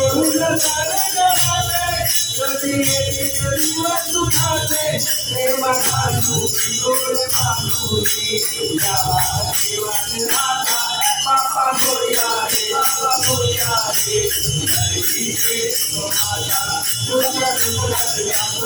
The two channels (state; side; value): identical; both; correlation 1.00